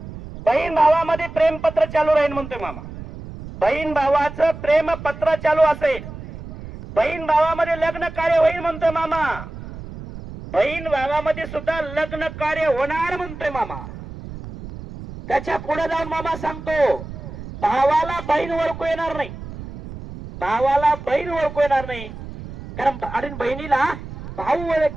बहीण भावामध्ये प्रेमपत्र चालू राहील. म्हणतोय मामा. बहीण भावाचं प्रेमपत्र चालू असेल, बहीण भावामध्ये लग्न कार्य होईल. म्हणतोय मामा. बहीण भावामध्ये सुद्धा लग्न कार्य होणार. म्हणतोय मामा. त्याच्या पुढे जाऊन मामा सांगतो, भावाला बहीण ओळखू येणार नाही, भावाला बहीण ओळखू येणार नाही. कारण आणि बहिणीला भाऊ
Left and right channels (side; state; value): right; noise; rumble, 12 dB below the sound